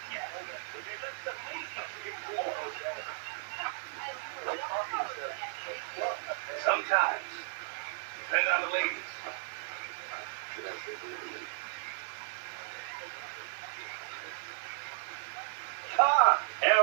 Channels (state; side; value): silent; left; digital silence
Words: Sometimes. Depend on the ladies.